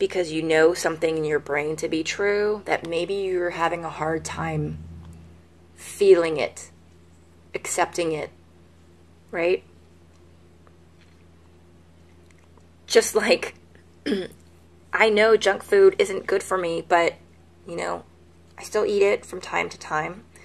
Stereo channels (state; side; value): identical; both; correlation 1.00